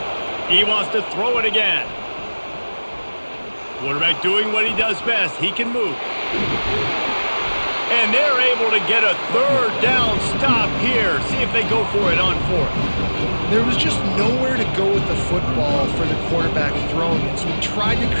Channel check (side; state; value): both; inverted; correlation -1.00